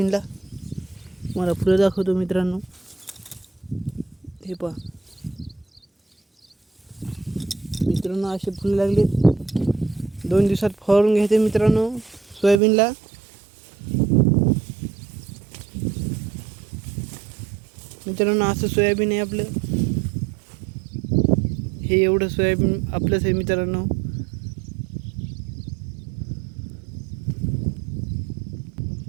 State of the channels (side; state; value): left; drops out; at 12.6 s